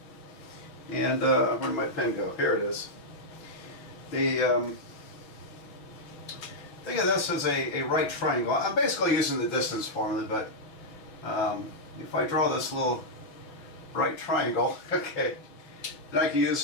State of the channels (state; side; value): late; right; 6.1 ms